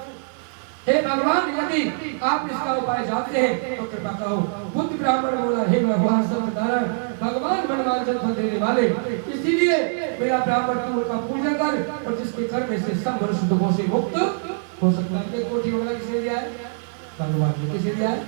हे भगवान, यदि आप इसका उपाय जानते हैं तो कृपा करो। बुद्ध ब्राह्मण बोला, हे भगवान सत्यनारायण, भगवान मनवांछित फल देने वाले, इसीलिए मेरा ब्राह्मण तुम का पूजन कर, और जिसके करने से सब मनुष्य दुखों से मुक्त हो सकता है। कोठी वाला किसने दिया है? भगवान ने। किसे दिया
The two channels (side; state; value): left; silent; digital silence